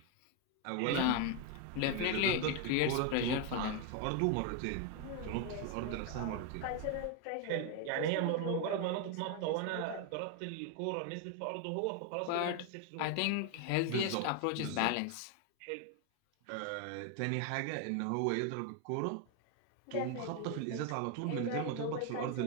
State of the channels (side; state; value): both; different; correlation 0.01